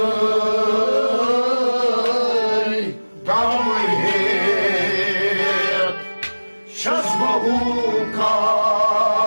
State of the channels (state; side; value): inverted; both; correlation -1.00